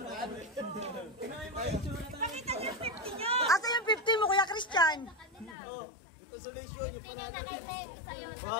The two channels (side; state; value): right; drops out; at 5.6 s